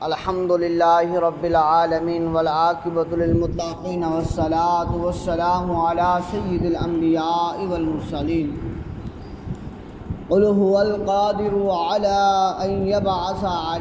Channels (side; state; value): both; identical; correlation 1.00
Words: الحمد للہ رب العالمین والعاقبۃ للمتقین والصلاة والسلام علی سید الانبیاء والمرسلین قل هو القادر علی ان یبعث